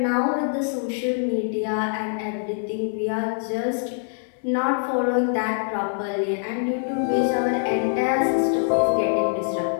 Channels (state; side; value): silent; right; 63 dB below the other